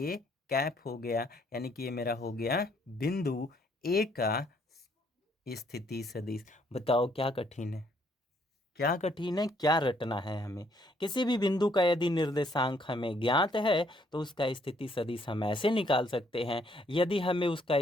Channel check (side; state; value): both; normal; correlation 0.68